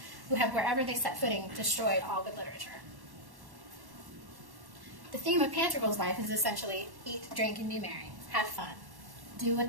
who have wherever they set footing destroyed all good literature." The theme of Pantagruel's life is essentially eat, drink, and be merry. Have fun. Do what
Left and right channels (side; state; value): left; late; 1.1 ms